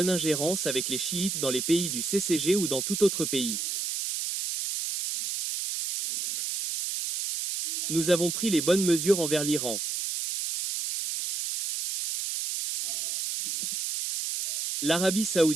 avec les chiites dans les pays du CCG ou dans tout autre pays. Nous avons pris les bonnes mesures envers l'Iran. L'Arabie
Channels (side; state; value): right; noise; hiss, 3 dB below the sound